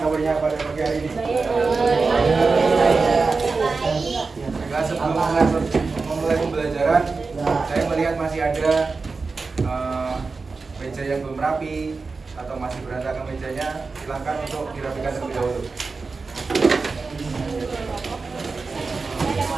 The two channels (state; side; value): quieter; left; 4.2 dB